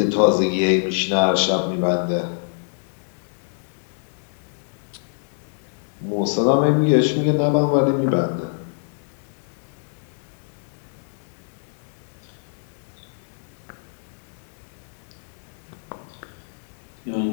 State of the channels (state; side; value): silent; right; digital silence